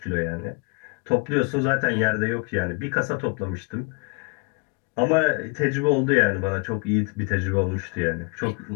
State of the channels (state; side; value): quieter; right; 30.6 dB